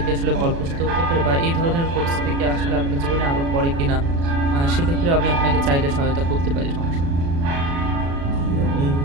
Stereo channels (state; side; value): late; left; 36 ms